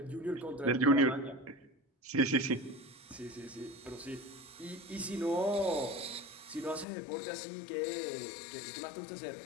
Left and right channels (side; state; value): right; drops out; at 6.9 s